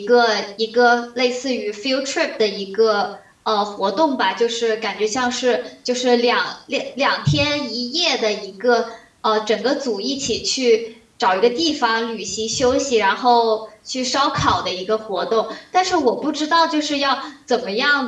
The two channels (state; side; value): identical; both; correlation 1.00